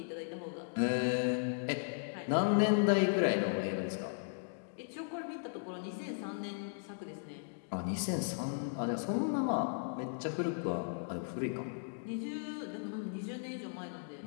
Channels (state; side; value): silent; right; digital silence